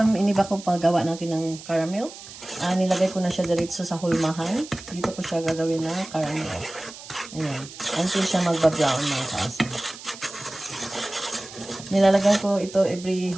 iniba ko paggawa natin ng caramel. Nilagay ko na siya diretso sa hulmahan. Dito ko siya gagawin na caramel. Ayan. Until siya magba-brown mga kaasam. Nilalagyan ko ito every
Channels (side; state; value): right; noise; hiss, 15 dB below the sound